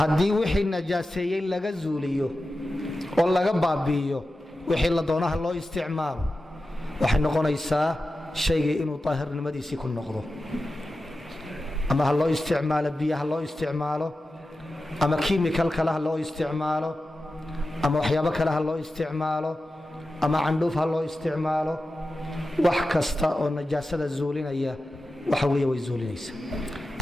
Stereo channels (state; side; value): normal; both; correlation 0.93